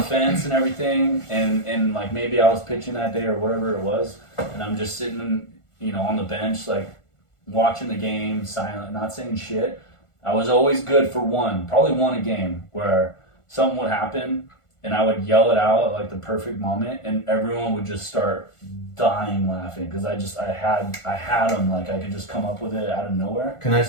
fence and everything, and like maybe I was pitching that day or whatever it was, and I'm just sitting, you know, on the bench like watching the game, silent, not saying shit. I was always good for probably one a game where something would happen and I would yell it out at like the perfect moment, and everyone would just start dying laughing because I had them, like I could just come up with it out of nowhere. Can I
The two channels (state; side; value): late; right; 1.4 ms